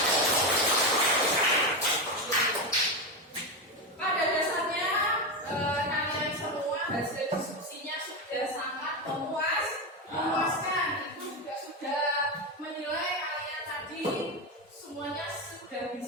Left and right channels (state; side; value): normal; both; correlation 0.13